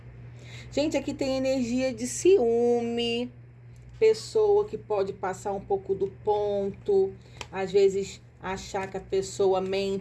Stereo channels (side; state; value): both; identical; correlation 1.00